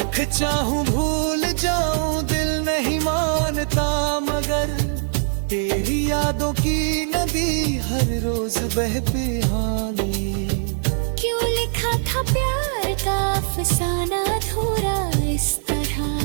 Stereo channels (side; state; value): left; silent; digital silence